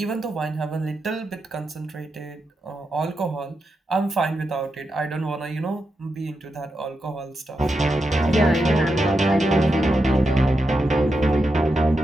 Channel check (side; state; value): both; normal; correlation 0.87